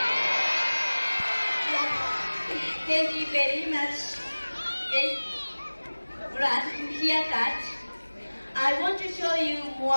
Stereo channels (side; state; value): both; inverted; correlation -1.00